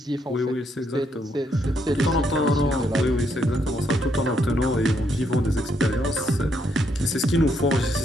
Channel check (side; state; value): both; normal; correlation 0.75